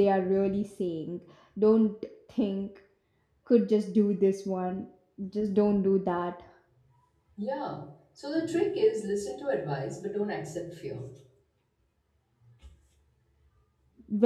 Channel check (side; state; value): both; identical; correlation 1.00